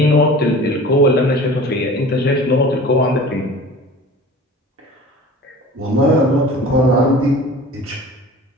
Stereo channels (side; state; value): both; normal; correlation 0.41